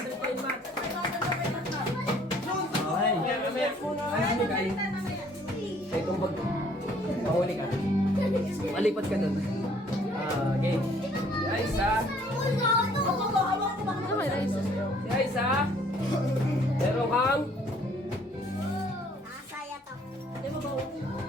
kayo ni Mat. Okay. Ay, hindi kayo. Kaya itong bag. Mahuli ka. Malipat ka dun. Okay. Guys, ha? Guys, ha? Meron kang...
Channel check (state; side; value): normal; both; correlation 0.60